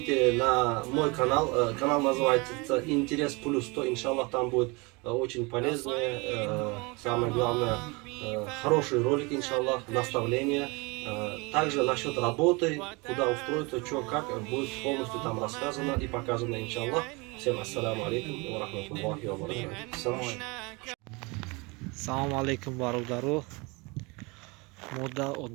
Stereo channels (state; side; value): quieter; left; 27.3 dB